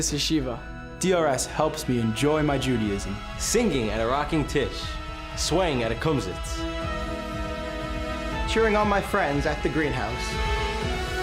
yeshiva. DRS helps me enjoy my Judaism. Singing at a rocking tish, swaying at a kumsitz. Cheering on my friends at the greenhouse.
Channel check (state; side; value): identical; both; correlation 1.00